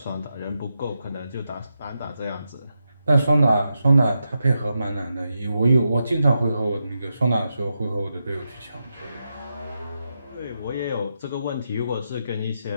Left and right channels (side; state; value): both; inverted; correlation -0.86